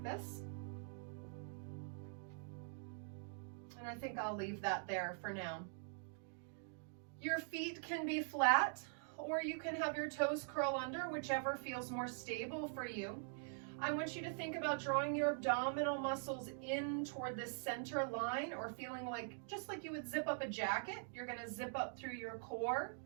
this. And I think I'll leave that there for now. Your feet can be flat, or you can have your toes curl under, whichever feels more stable for you. I want you to think about drawing your abdominal muscles in toward the center line, or feeling like, just like you would zip up a jacket, you're gonna zip up through your core.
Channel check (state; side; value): silent; left; digital silence